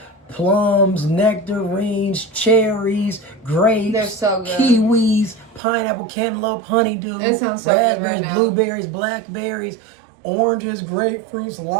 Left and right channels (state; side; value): drops out; left; at 5.6 s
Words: plums, nectarines, cherries, grapes, They're so good. kiwis, pineapple, cantaloupe, honeydew, It sounds so good raspberries, right now. blueberries, blackberries, oranges, grapefruits,